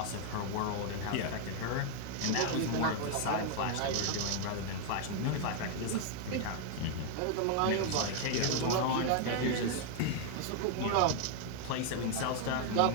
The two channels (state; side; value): different; both; correlation 0.00